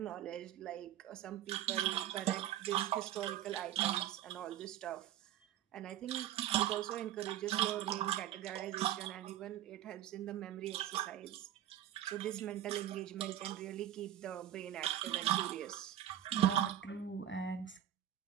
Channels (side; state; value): left; quieter; 11.9 dB